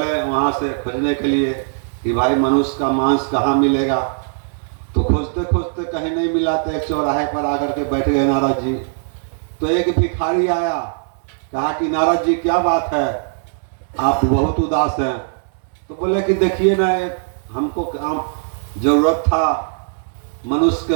वहाँ से खोजने के लिए कि भाई मनुष्य का मांस कहाँ मिलेगा। तो खोजते खोजते कहीं नहीं मिला, तो एक चौराहे पर आकर के बैठ गए नारद जी। तो एक भिखारी आया, कहा कि नारद जी क्या बात है, आप बहुत उदास हैं। तो बोले कि देखिए ना, हमको काम जरूरत था मनुष्य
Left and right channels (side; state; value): left; silent; digital silence